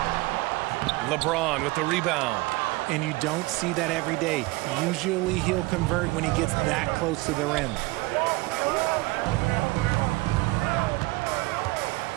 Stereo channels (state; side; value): quieter; left; 22.3 dB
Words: LeBron with the rebound. And you don't see that every day. Usually he'll convert when he gets that close to the rim.